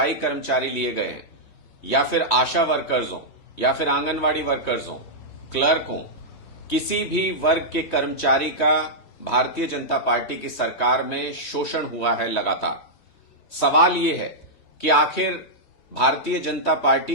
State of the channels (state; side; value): late; right; 3.2 ms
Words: कर्मचारी लिए गए हैं या फिर आशा वर्कर्स हों या फिर आंगनवाड़ी वर्कर्स हों, क्लर्क हों, किसी भी वर्ग के कर्मचारी का भारतीय जनता पार्टी की सरकार में शोषण हुआ है लगातार। सवाल यह है कि आखिर Bharatiya Janata